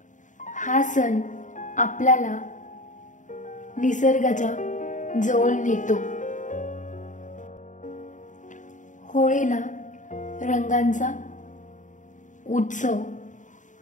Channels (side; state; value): right; late; 0.36 ms